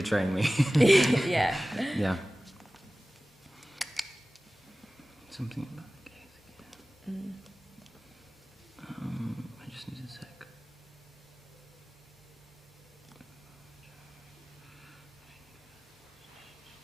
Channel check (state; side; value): normal; both; correlation 0.97